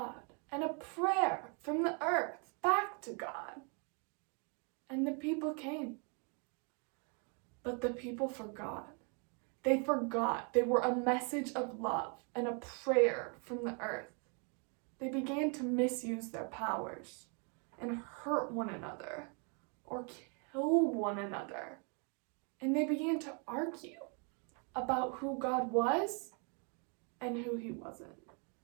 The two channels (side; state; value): left; quieter; 36.7 dB